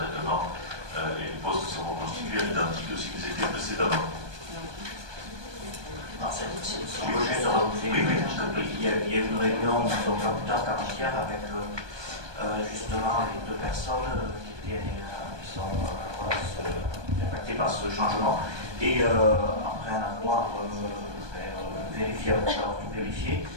et les postes sont reconstitués à l'identique de ce qu'ils étaient précédemment. Si je peux juste rajouter, il y a eu une réunion, donc pas plus tard qu'avant-hier, avec justement les deux personnes qui sont impactées par ce changement. Et après un avoir vérifié, avoir tout vérifié,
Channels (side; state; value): left; late; 1.2 ms